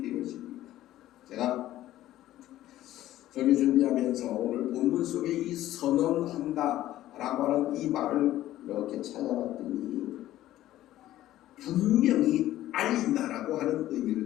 제가 설교 준비하면서 오늘 본문 속에 이 선언한다라고 하는 이 말을 이렇게 찾아봤더니 분명히 알린다라고 하는 의미를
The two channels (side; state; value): right; quieter; 14.1 dB